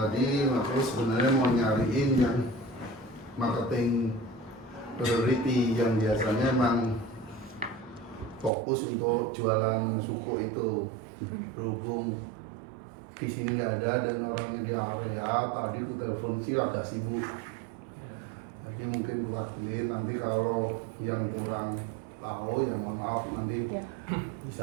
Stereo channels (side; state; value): left; drops out; at 8.5 s